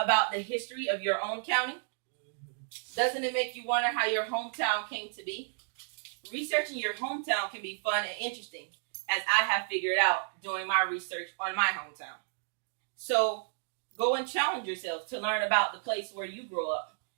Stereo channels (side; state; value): left; silent; digital silence